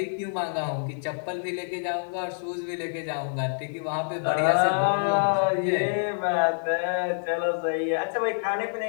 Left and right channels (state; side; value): silent; right; digital silence